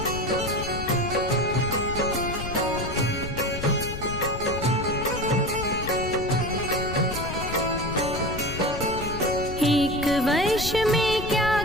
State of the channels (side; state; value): left; noise; rumble, 8 dB below the sound